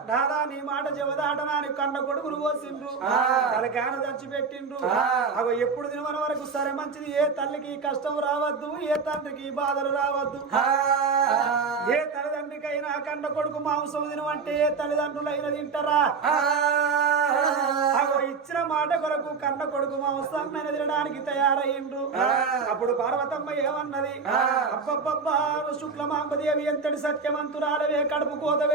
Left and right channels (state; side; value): quieter; left; 5.1 dB